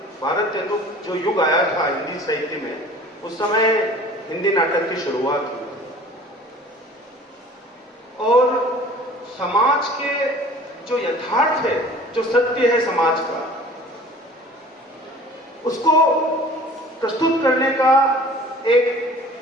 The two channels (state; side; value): normal; both; correlation 0.46